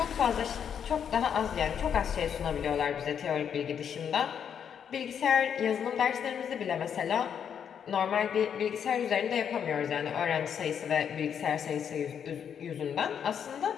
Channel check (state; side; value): quieter; right; 8.0 dB